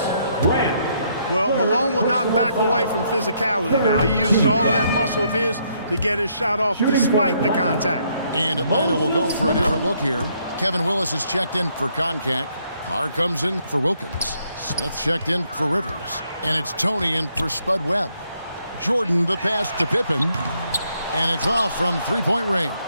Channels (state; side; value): inverted; both; correlation -0.72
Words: Well, Malone will not back away from physicality now. He uses all of that muscle of his to get his shot off despite the contact. And Atlanta will go for a different look here. Kevin Willis is checked in for Concac. Carr comes in for Wilkins. Smith checked in for Rivers. And it's Tony in for Spud Webb. Jordan the pass to Pippen. And it's off from three-point range.